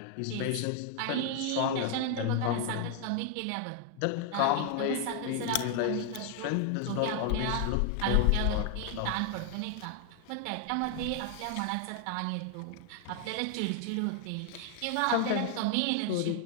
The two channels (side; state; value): both; different; correlation 0.00